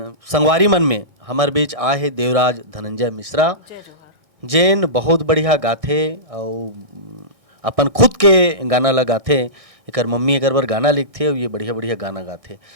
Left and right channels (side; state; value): left; late; 1.6 ms